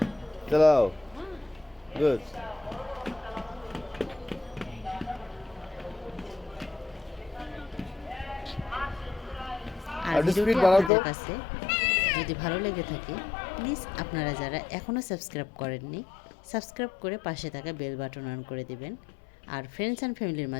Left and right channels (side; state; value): right; drops out; at 10.9 s